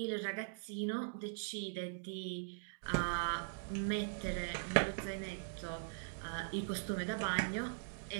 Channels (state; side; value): silent; left; digital silence